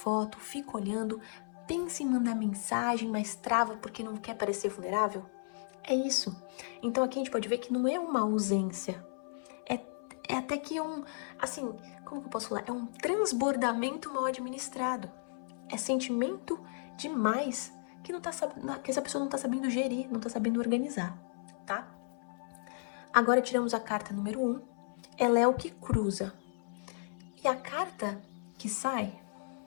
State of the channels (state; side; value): silent; right; 55 dB below the other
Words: fica olhando, pensa em mandar mensagem, mas trava porque não quer parecer vulnerável? É isso. Então aqui a gente pode ver que não é uma ausência. É até que assim, como que eu posso falar? É um transbordamento mal administrado. É sentimento demais que, que essa pessoa não tá sabendo gerir, não tá sabendo organizar, tá? Agora tiramos a carta número 1. Ela é o que cruza. E a carta que sai